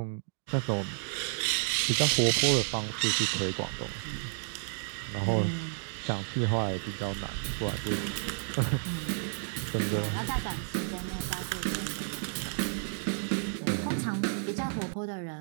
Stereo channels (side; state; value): left; silent; digital silence